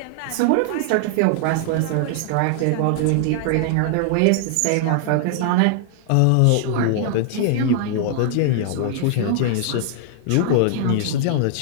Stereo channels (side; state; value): both; different; correlation 0.00